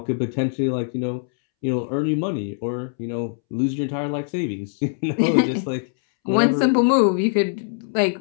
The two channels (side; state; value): right; silent; 64 dB below the other